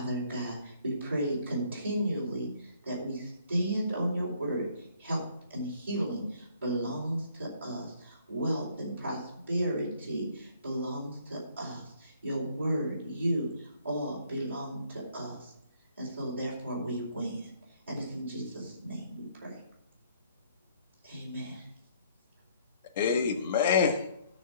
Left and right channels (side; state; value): both; inverted; correlation -0.63